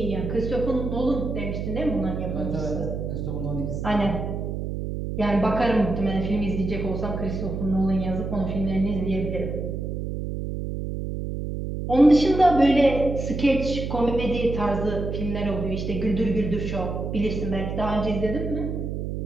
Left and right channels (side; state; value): right; noise; hum, 4 dB below the sound